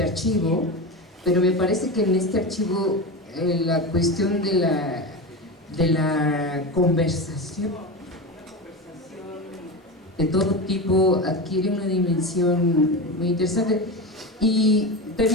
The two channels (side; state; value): both; normal; correlation 0.22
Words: archivo, pero me parece que en este archivo la cuestión de la conversación de todo tipo adquiere una dimensión muy interesante. Y